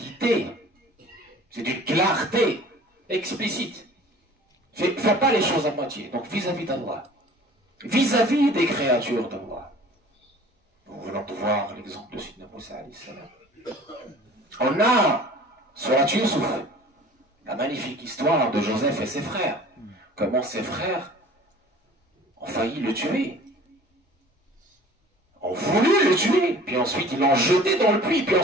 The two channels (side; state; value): both; normal; correlation 0.47